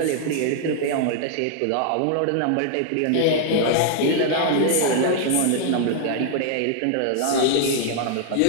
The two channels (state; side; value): different; both; correlation -0.01